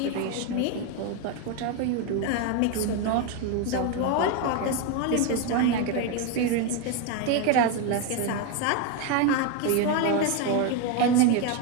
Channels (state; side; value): different; both; correlation 0.02